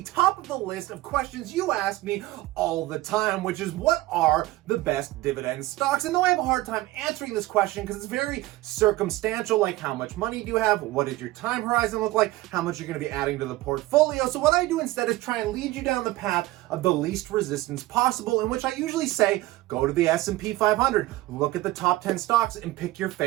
top of the list of questions you ask me all the time, which is what are the best dividend stocks? And though I have a hard time answering this question because it's very circumstantial, like how much money do you have, what does your time horizon look like, how much you're going to be adding to the portfolio. So what I do instead is try and lead you down the path of the least resistance possible, in which I usually say, go to the S&P 500, look at the top 10 stocks and pick your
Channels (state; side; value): quieter; left; 18.0 dB